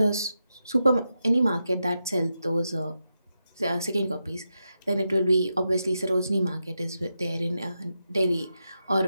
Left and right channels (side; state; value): both; inverted; correlation -0.87